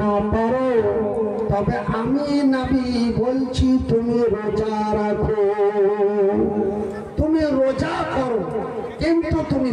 পারো, তবে আমি নবী বলছি তুমি রোজা রাখো, তুমি রোজা করো, কিন্তু তুমি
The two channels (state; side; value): identical; both; correlation 1.00